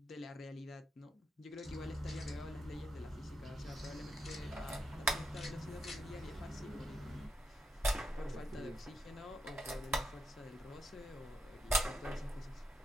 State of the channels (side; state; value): both; normal; correlation 0.84